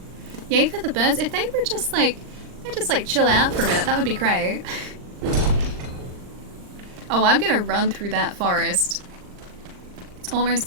Yay for the birds. If they were just like, they just like chill out for a minute, that would be great. Oh, I'm gonna run through that forest. It's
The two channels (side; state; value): left; late; 39 ms